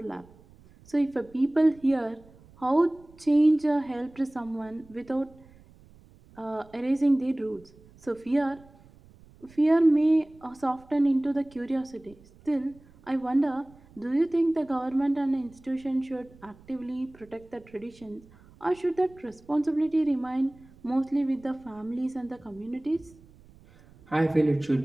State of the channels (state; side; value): noise; right; rumble, 26 dB below the sound